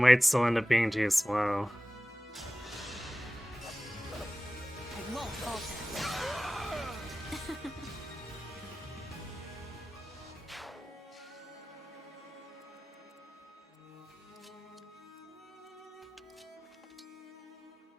still end up being too slow. I won't falter.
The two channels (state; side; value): normal; both; correlation 0.96